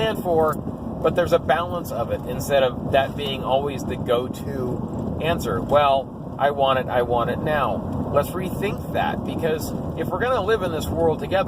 for, but there's a balance of it, instead of that being always the go-to answer. Well, I want it now. Let's rethink that, because if we're going to live in this world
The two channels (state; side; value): identical; both; correlation 1.00